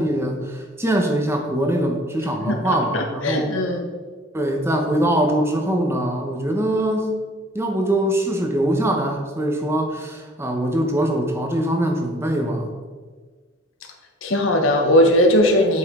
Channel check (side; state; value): both; normal; correlation 0.46